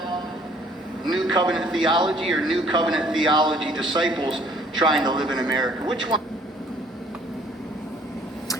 New Covenant theology, or New Covenant theology disciples trying to live in America? Which one?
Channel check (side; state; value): both; normal; correlation 0.58